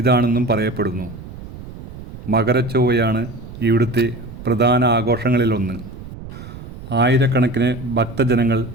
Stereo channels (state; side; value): noise; right; rumble, 13 dB below the sound